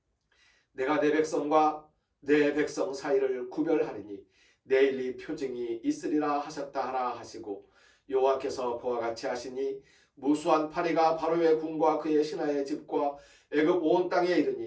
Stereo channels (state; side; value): identical; both; correlation 1.00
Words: 내가 내 백성과 내 백성 사이를 구별하리니 내일 이 표징이 있으리라 하셨다 하라 하시고 여호와께서 그와 같이 하시니 무수한 파리가 바로의 궁과 그의 신하의 집과 애굽 온 땅에